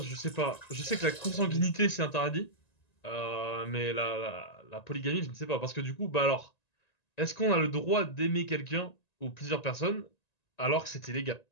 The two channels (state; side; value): late; right; 1.9 ms